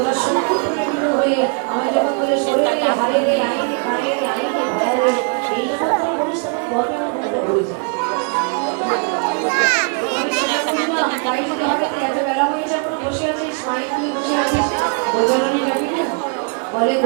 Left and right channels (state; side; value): quieter; left; 38.9 dB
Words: সংকীর্ণ হয়ে আমি যখন তোদের শরীরে হারে রে আইনে কায়ে রে আইনে ভায়া রে এই যখন তোরা বলিস তখন গর্বে আমার মতো হয়ে যায় আমি সেটা বুঝি না তাই যদি হবে তো এত বেলা হয়ে যখন বসে আছিস মাইক নিয়ে বসে আছিস গোচারণে যাবি না বলে